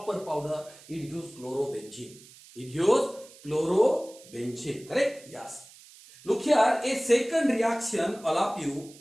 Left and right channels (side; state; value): right; noise; hiss, 22 dB below the sound